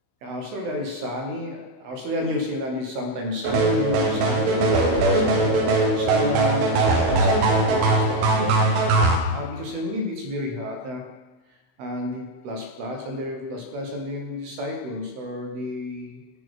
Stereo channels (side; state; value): left; late; 16 ms